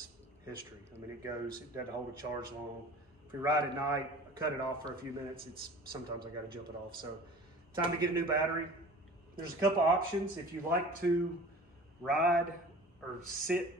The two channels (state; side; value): normal; both; correlation 0.42